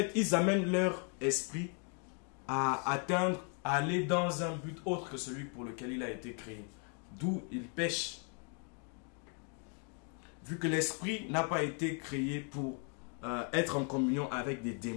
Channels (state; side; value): quieter; right; 39.9 dB